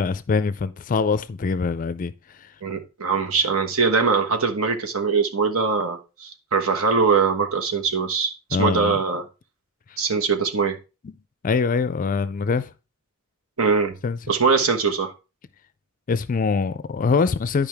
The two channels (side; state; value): both; normal; correlation 0.08